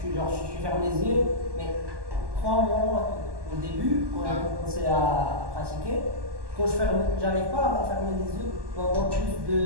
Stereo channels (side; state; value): left; late; 1.1 ms